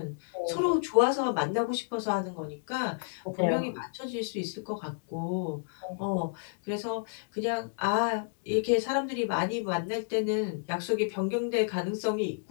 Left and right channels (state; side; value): silent; right; digital silence